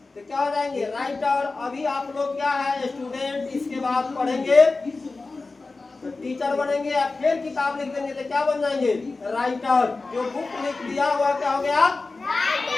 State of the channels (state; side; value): quieter; right; 3.7 dB